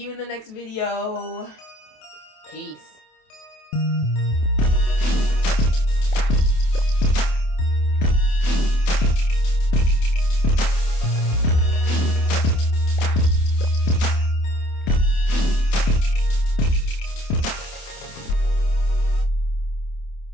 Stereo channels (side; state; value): right; late; 27 ms